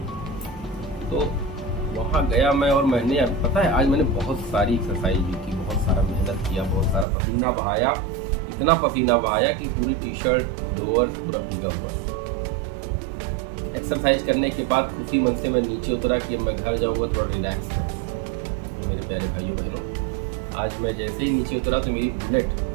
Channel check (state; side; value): drops out; left; at 7.1 s